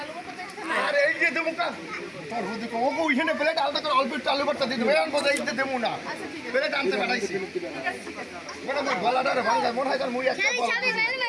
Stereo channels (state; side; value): identical; both; correlation 1.00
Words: আরে এই যে দেবো কা তোর বুদ্ধি কো ওকে ওইখানে প্লেট আলাদা করে অল্প একটু আলু ভর্তা দিয়ে দেবো আমি বলে এইতে দেবো না প্লেট আনতে পাঠাইছি বড় বড় গলাটা রে ভাঙা মনে হয় তার মুই একটা বল চাবি মেল